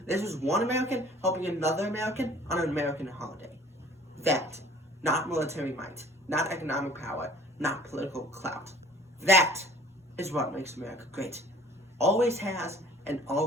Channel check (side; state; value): both; normal; correlation 0.50